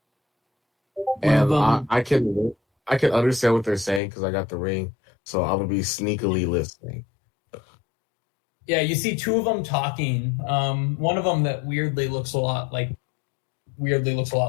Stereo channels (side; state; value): right; drops out; at 4.0 s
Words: And I can understand what they're saying because I got the ring, so I'm gonna be sneakily listening. Yeah, you see two of them talking. One of them that weirdly looks a lot like